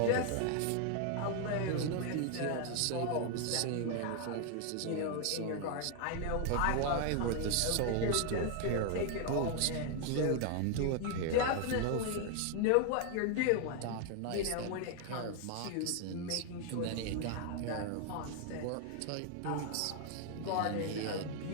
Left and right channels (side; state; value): both; different; correlation 0.00